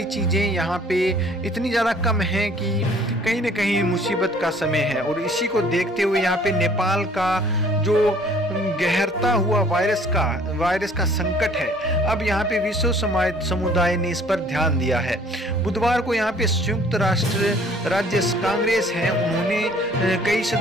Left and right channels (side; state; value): both; normal; correlation 0.55